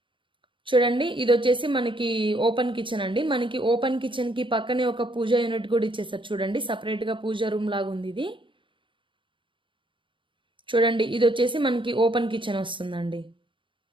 చూడండి, ఇది వచ్చేసి మనకి ఓపెన్ కిచెన్ అండి. మనకి ఓపెన్ కిచెన్కి పక్కనే ఒక పూజా యూనిట్ కూడా ఇచ్చేసారు. చూడండి, సపరేట్గా పూజా రూమ్ లాగా ఉంది ఇది. చూడండి, ఇది వచ్చేసి మనకి ఓపెన్ కిచెన్ వస్తుందండి.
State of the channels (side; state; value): left; late; 0.24 ms